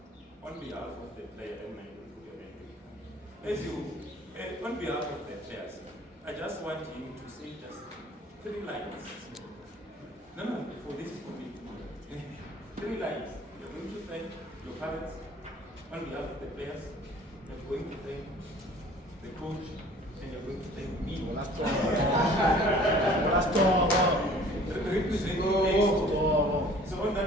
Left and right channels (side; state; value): both; normal; correlation 0.50